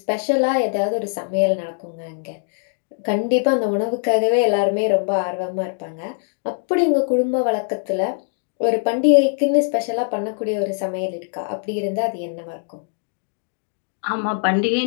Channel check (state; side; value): silent; right; 64 dB below the other